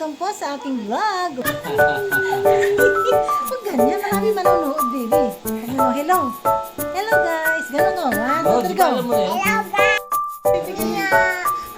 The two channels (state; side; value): identical; both; correlation 1.00